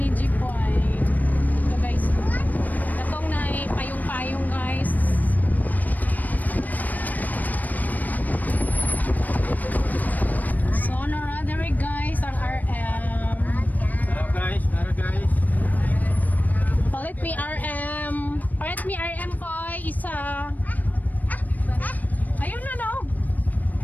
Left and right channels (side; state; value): right; late; 0.082 ms